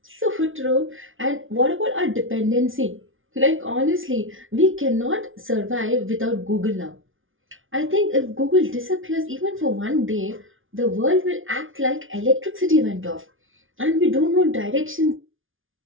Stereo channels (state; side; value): late; left; 0.58 ms